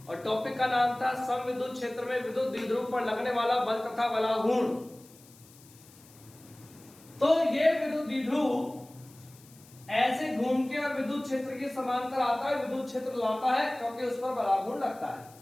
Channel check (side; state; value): left; noise; hiss, 24 dB below the sound